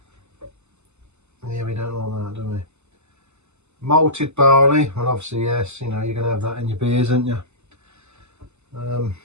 Yeah, we don't like that, do we? Malted barley. Well, obviously, yes. You know, you're going to have that in your beers, aren't you?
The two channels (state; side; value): late; left; 0.82 ms